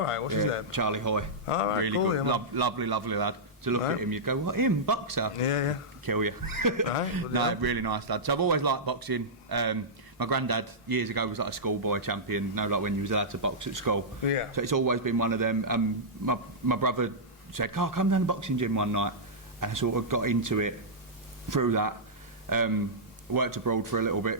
right, what's his name? Charlie Hoy. All right, really cool, good, yeah, lovely lad. To look at him, you'd go, "What, him, boxer?" Yeah. Kill you. Right, no, really nice lad. So I've always liked boxing. My granddad years ago was like a schoolboy champion. Like when you was allowed to box at school. Yeah. So it's always been one of them. My brother said, "Oh, come down to the boxing gym one night," and I sort of got into it through that. Worked abroad for a little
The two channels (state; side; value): normal; both; correlation -0.12